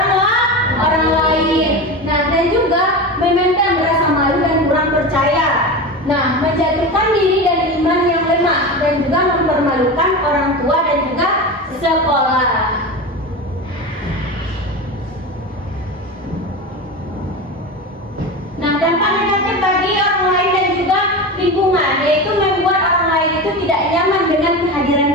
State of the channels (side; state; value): both; normal; correlation 0.25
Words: lain. Nah, dan juga memendam rasa malu dan kurang percaya. Nah, menjatuhkan diri dan iman yang lemah, dan juga mempermalukan orang tua dan juga sekolah. Nah, dampak negatif bagi orang lain dan juga lingkungan, yaitu membuat orang lain itu tidak nyaman dengan kehadiran